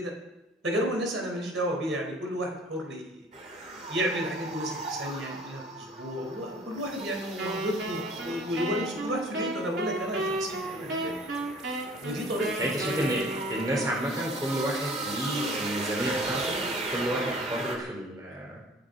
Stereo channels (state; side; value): normal; both; correlation 0.49